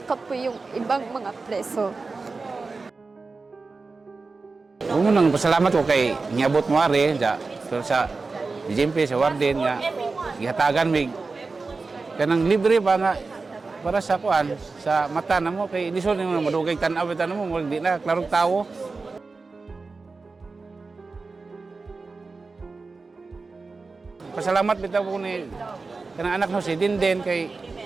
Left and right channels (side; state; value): left; quieter; 4.0 dB